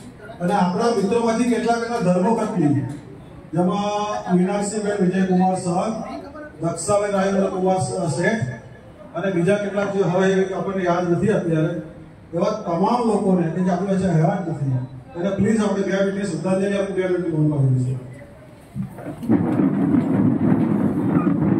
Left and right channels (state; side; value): identical; both; correlation 1.00